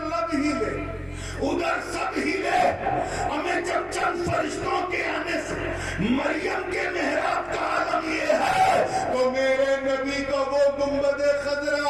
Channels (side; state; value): both; identical; correlation 1.00